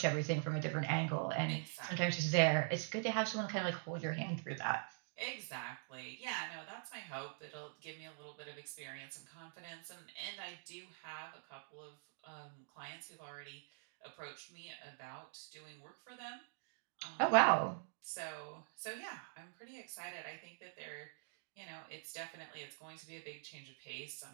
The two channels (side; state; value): left; silent; digital silence